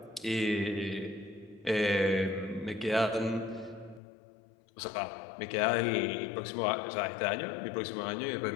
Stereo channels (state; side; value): drops out; right; at 4.0 s